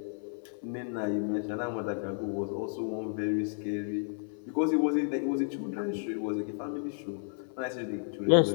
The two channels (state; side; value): silent; right; 56 dB below the other